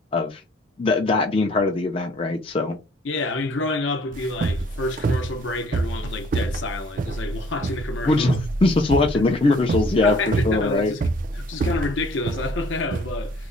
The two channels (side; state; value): both; normal; correlation 0.58